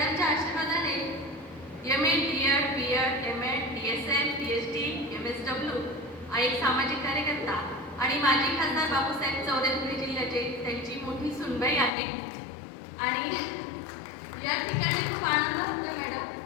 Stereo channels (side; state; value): right; drops out; at 11.9 s